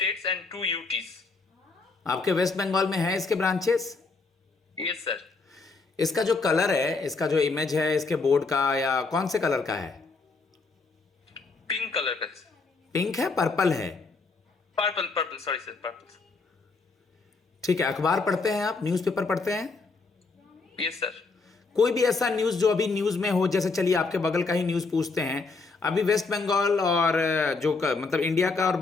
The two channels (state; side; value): quieter; right; 4.1 dB